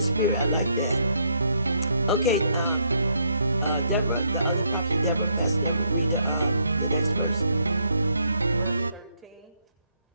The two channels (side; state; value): both; inverted; correlation -0.73